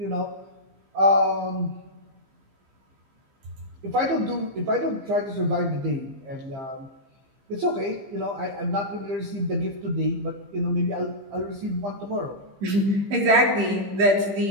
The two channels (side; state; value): left; late; 15 ms